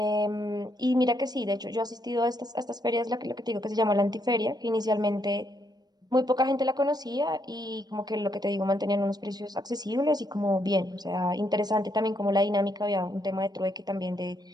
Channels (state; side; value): late; left; 0.19 ms